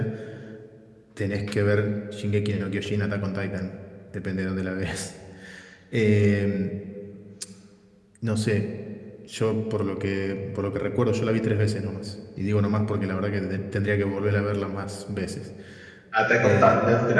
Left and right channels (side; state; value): both; identical; correlation 1.00